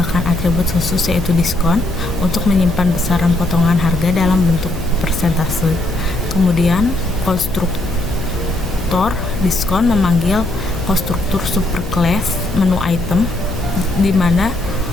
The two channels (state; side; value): noise; left; hum, 8 dB below the sound